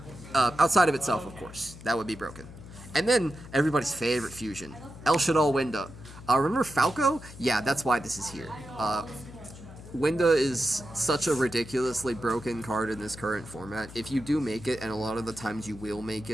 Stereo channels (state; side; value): noise; left; hum, 16 dB below the sound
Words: Outside of itself, of course. That would be broken. And then, everybody's favorite fusion, El Shaddai Winda. Remember Falco? Yeah, that's why this is here. Winda is such a ridiculously broken card in this current format. If you do make it, and a lot of the times you will make